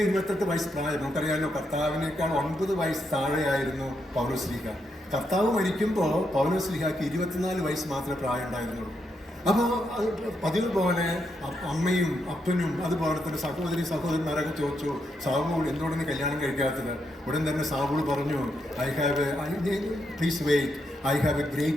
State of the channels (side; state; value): both; normal; correlation 0.80